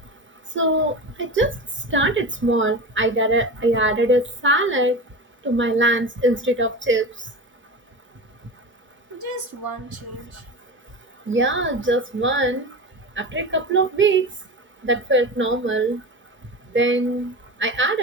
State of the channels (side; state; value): both; normal; correlation 0.27